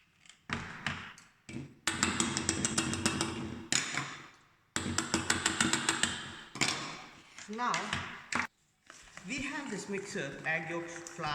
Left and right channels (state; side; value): identical; both; correlation 1.00